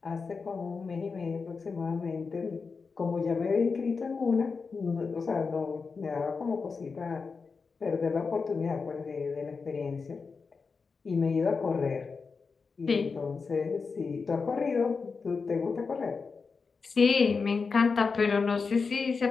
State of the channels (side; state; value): right; quieter; 4.9 dB